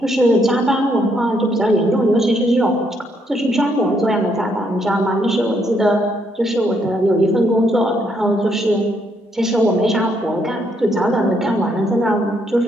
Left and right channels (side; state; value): both; normal; correlation 0.73